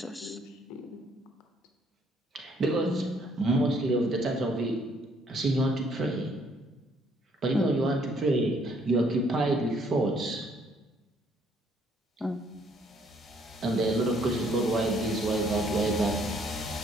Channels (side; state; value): both; normal; correlation 0.65